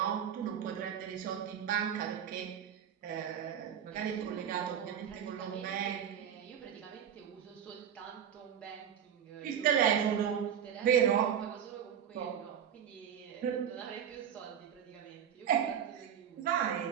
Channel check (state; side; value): quieter; left; 8.8 dB